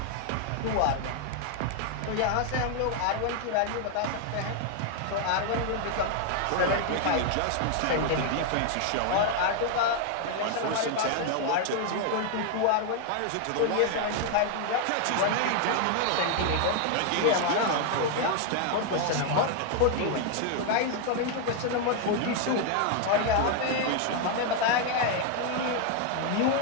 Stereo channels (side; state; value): both; different; correlation 0.00